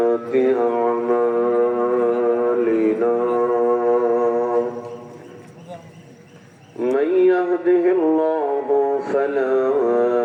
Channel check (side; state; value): both; identical; correlation 1.00